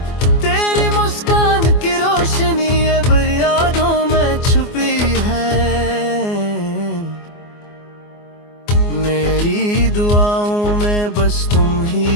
मेरी दुआओं में बस तुम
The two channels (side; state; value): right; late; 24 ms